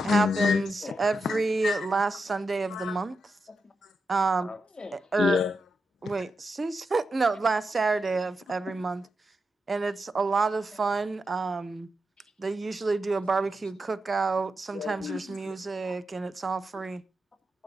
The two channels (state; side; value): normal; both; correlation 0.87